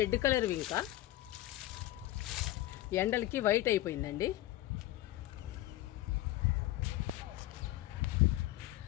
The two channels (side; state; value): right; quieter; 15.6 dB